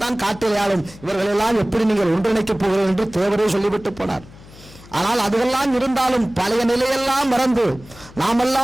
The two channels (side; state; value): left; noise; hum, 21 dB below the sound